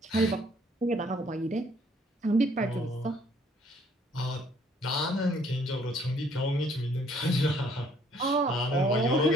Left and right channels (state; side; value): normal; both; correlation 0.63